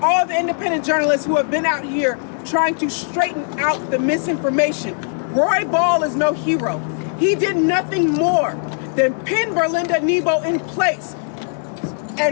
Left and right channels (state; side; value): silent; right; 61 dB below the other